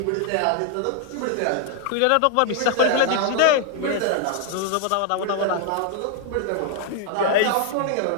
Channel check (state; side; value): different; both; correlation 0.00